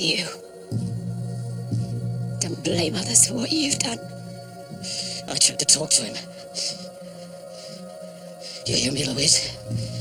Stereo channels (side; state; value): both; identical; correlation 1.00